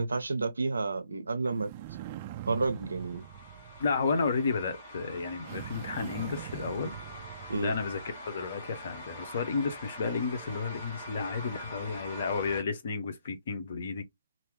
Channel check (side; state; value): both; inverted; correlation -0.73